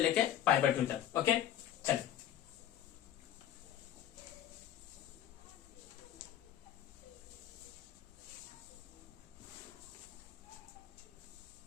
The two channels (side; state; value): right; quieter; 10.9 dB